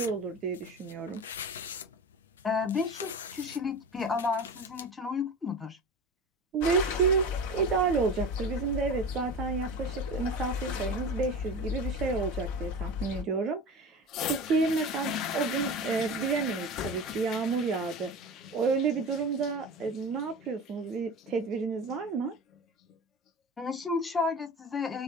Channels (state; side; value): normal; both; correlation 0.31